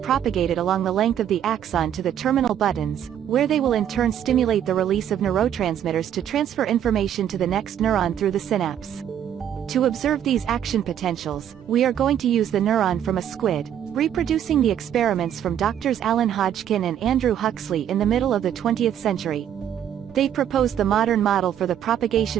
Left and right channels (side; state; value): left; quieter; 10.0 dB